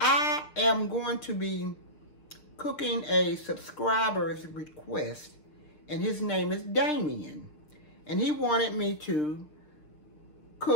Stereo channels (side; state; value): right; late; 6.6 ms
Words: I am going to be cooking a subscriber's request, and his name is Damien. And he wanted me to